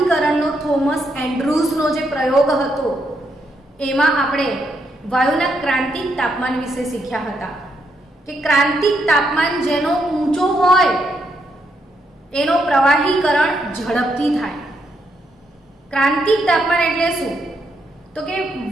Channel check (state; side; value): normal; both; correlation 0.78